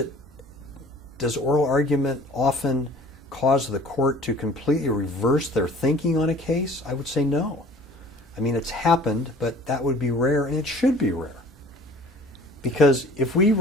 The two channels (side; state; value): both; normal; correlation 0.48